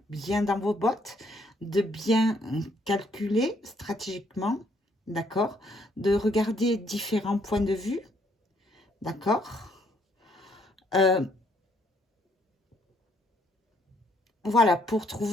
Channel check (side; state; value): both; normal; correlation 0.68